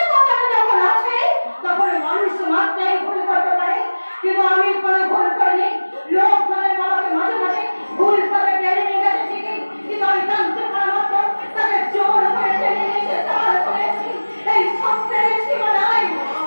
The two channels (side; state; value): both; inverted; correlation -1.00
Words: কথাটা যখন আসে তখন মানুষ মাত্রাই ভুল করতে পারে, কিন্তু আমি কোনো ভুল করিনি। লোক মানে বাবাকে মাঝে মাঝে ভুল করে টেনে নিয়ে গেছে ঠিকই, কিন্তু আমি জানতে পারা মাত্র তাকে জোর করে টেনে নিয়ে এসে দাঁড় করেছি এই সত্যের সীমানায়।